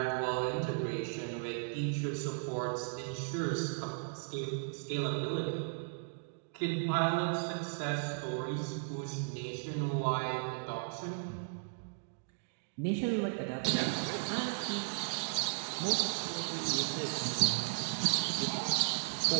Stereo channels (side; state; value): left; silent; digital silence